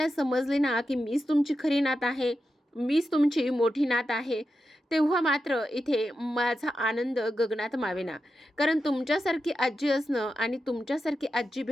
समजले ना की मीच तुमची खरी नात आहे, मीच तुमची मोठी नात आहे, तेव्हा मात्र इथे माझा आनंद गगनात मावेना. कारण तुमच्यासारखी आजी असणं आणि तुमच्यासारखी आजी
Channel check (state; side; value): normal; both; correlation 0.89